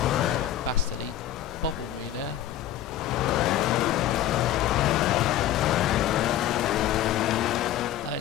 Bastard, he bobbled me there.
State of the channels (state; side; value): quieter; right; 11.8 dB